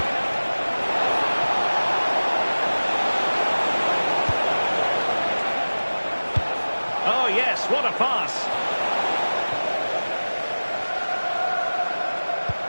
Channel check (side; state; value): both; inverted; correlation -1.00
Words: Oh, yes, what a pass.